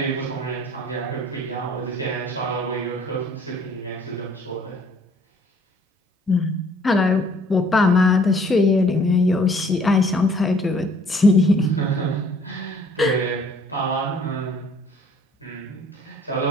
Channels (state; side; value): normal; both; correlation 0.58